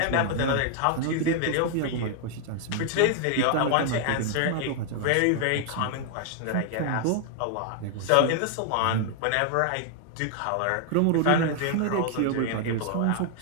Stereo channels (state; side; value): different; both; correlation 0.00